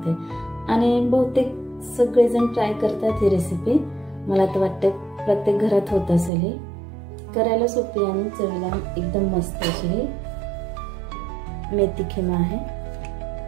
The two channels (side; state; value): left; drops out; at 6.3 s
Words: आणि बहुतेक सगळेजण ट्राय करतात ही रेसिपी। मला तर वाटतं प्रत्येक घरात होत असेल। ही करायला सोपी आणि चवीला एकदम मस्त अशी ही मेथी खिमा आहे।